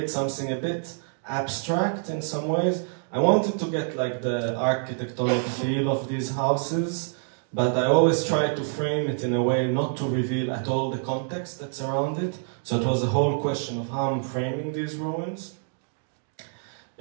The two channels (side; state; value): left; silent; 60 dB below the other